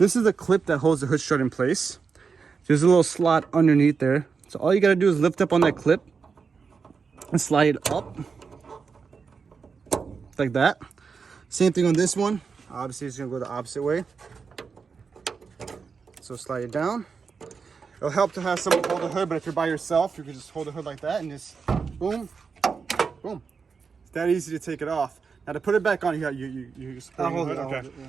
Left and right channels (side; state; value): left; quieter; 5.4 dB